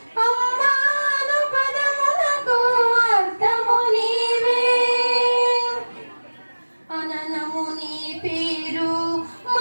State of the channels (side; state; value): both; inverted; correlation -1.00